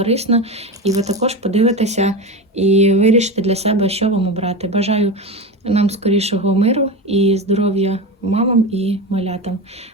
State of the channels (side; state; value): both; normal; correlation 0.22